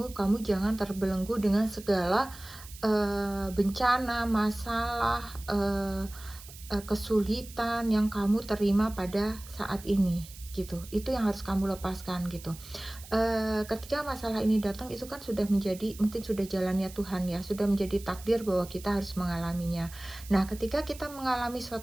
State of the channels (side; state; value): right; noise; hiss, 17 dB below the sound